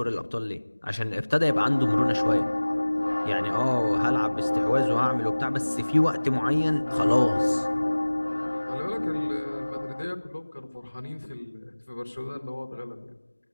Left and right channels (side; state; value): both; inverted; correlation -1.00